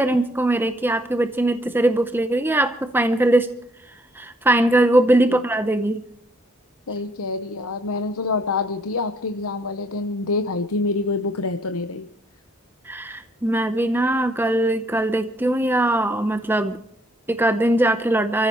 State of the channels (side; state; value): both; normal; correlation 0.67